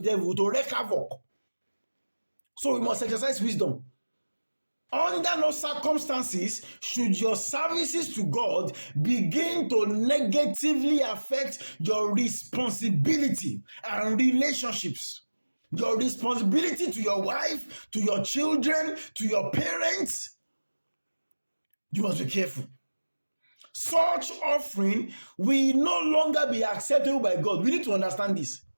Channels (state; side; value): inverted; both; correlation -1.00